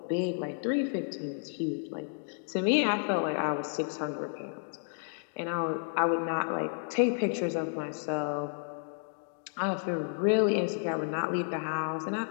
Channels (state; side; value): silent; right; digital silence